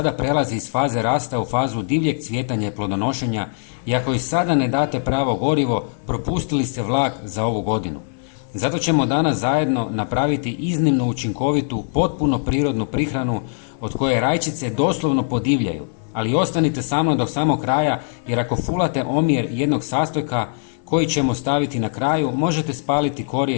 prelazi iz faze rasta u fazu divljeg cvjetanja i plodonošenja i ako joj sada ne date pravo gorivo, propustili ste vlak za ovu godinu. Zato ćemo danas zajedno napraviti iznimno učinkovitu, potpuno prirodnu prihranu od koje rajčice doslovno podivljaju. Ali ostanite sa mnom do samog kraja jer ako fulate omjer jednog sastojka koji ćemo staviti na kraju, možete spaliti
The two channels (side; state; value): right; silent; 58 dB below the other